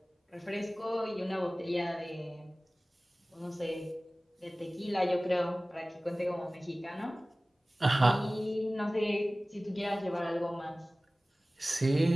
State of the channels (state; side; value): normal; both; correlation 0.98